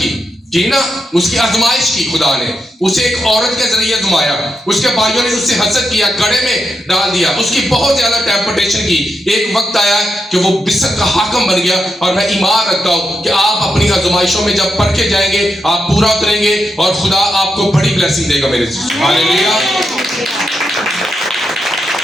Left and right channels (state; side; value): normal; both; correlation 0.85